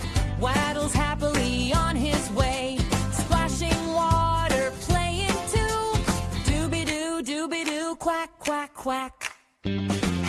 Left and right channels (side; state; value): both; identical; correlation 1.00